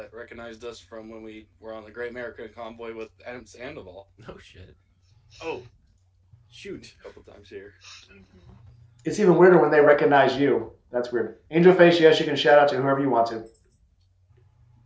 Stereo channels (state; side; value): identical; both; correlation 1.00